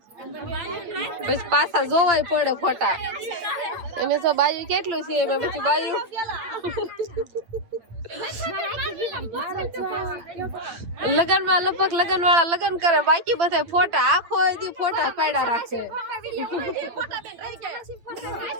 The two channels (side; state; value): left; late; 8.9 ms